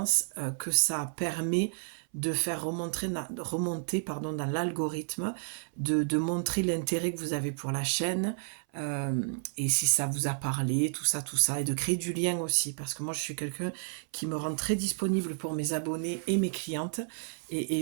que ça permet de faire remonter dans l'algorithme, de montrer l'intérêt que vous avez pour la chaîne, et si ça vous a parlé, tout ça, et de créer du lien aussi, parce que moi je suis quelqu'un qui me rend très disponible pour mes abonnés et mes clientes,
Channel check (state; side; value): silent; left; 57 dB below the other